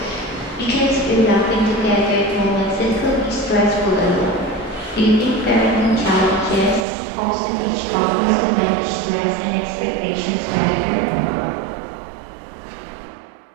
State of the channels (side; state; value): left; drops out; at 6.9 s